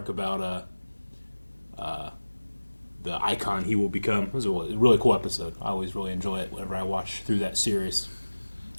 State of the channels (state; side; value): inverted; both; correlation -1.00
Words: about the icon he will become. It was a really cool episode. I always really enjoy it whenever I watch through that series.